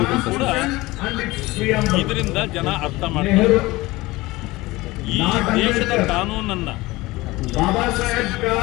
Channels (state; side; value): quieter; right; 20.4 dB